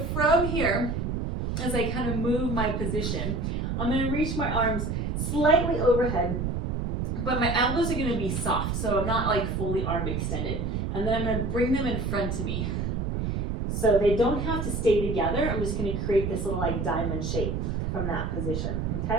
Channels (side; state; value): right; noise; rumble, 1 dB below the sound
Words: from here, as I kind of move my position, I'm going to reach my arms slightly overhead, but my elbows are going to be soft, so I'm not like fully arm extended. And then I'm going to bring them in front of me. So they don't have to stay together. I'm just going to create this little like diamond shape from that position,